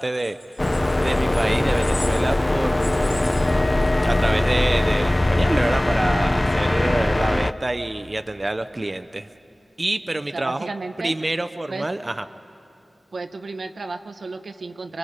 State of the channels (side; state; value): both; normal; correlation 0.98